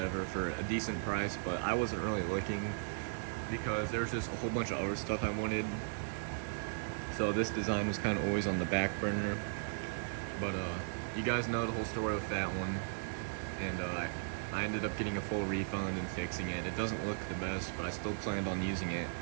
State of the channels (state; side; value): silent; left; 53 dB below the other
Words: for a decent price, but I wasn't really looking because there's just a whole bunch of other stuff I wanted. So this design was kind of always on the back burner. But you guys know the whole story with that one, and I ended up getting a full refund and fixing it. It doesn't look the best, but I still planned on using it.